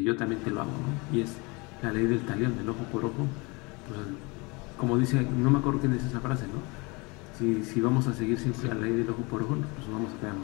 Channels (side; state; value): right; quieter; 27.3 dB